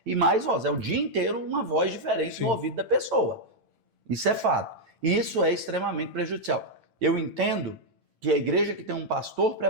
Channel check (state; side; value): late; left; 8.9 ms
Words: e mais vozes. É o dia inteiro uma voz diferente no ouvido da pessoa. Isso é fato. E isso é extremamente prejudicial. Eu entendo que a igreja que tem um pastor